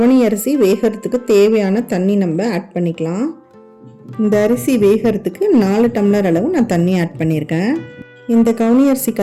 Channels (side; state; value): both; identical; correlation 1.00